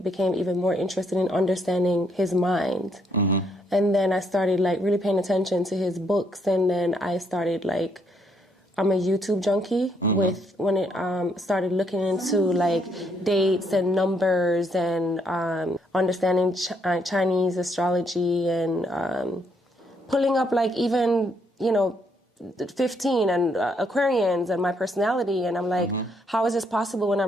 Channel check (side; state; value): both; normal; correlation 0.72